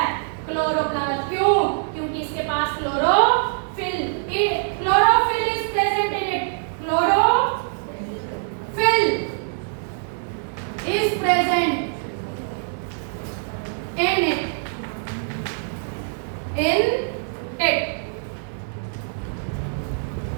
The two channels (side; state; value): left; silent; 63 dB below the other